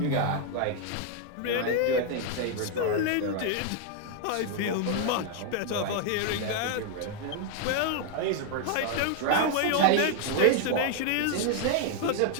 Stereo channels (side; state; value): both; different; correlation 0.00